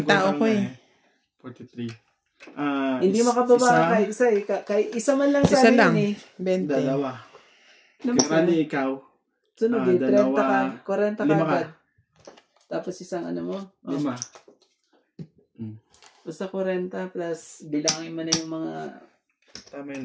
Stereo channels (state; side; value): identical; both; correlation 1.00